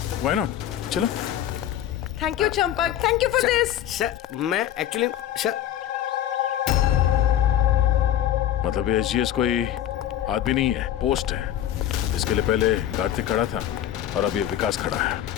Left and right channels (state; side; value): quieter; right; 11.5 dB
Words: व्हाई नॉट, चलो। Thank you Champak, thank you for this. Sir मैं एक्चुअली सर, मतलब ये एसजीएस कोई आदमी नहीं है, पोस्ट है। इसके लिए पहले कार्तिक खड़ा था और अब ये विकास खड़ा है।